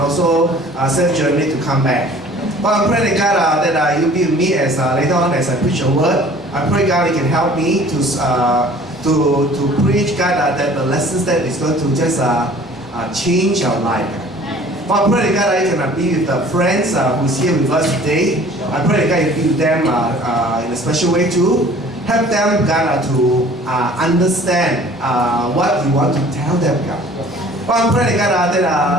a safe journey to come back. But I pray that God, that you be with me as later on as I preach your word. I pray God, you can help me to preach God that the lessons that is going to just change our life. But I pray that God, you can be with the friends who's here with us today. I pray that God, you be with them in a special way too. Help them, God, to understand what you want to tell them, God. But I pray that God,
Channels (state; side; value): normal; both; correlation 0.50